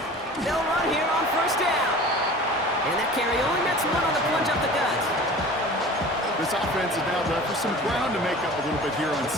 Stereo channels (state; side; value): normal; both; correlation 0.41